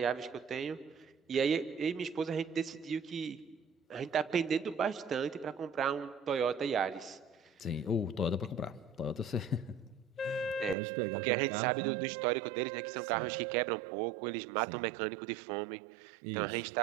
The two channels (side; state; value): left; drops out; at 10.8 s